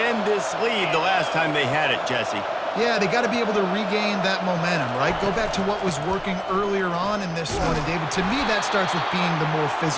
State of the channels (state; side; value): identical; both; correlation 1.00